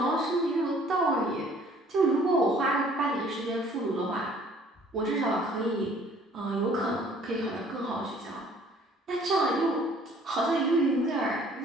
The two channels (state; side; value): normal; both; correlation 0.56